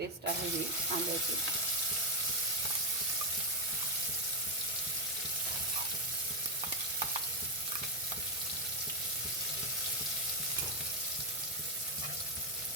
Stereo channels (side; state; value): both; normal; correlation 0.03